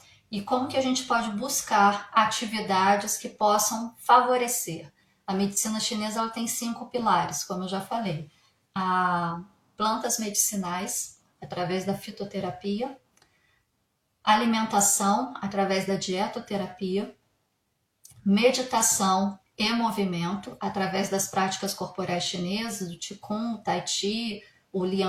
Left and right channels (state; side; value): identical; both; correlation 1.00